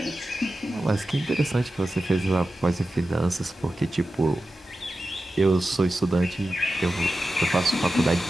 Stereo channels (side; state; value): both; normal; correlation 0.93